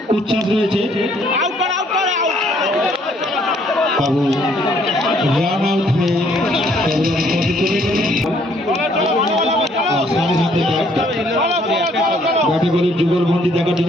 উচ্ছ্বাস রয়েছে। বাবু রান আউট হয়ে ব্যাটে বলের যুগল বন্দি দেখার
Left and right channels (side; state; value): both; normal; correlation 0.64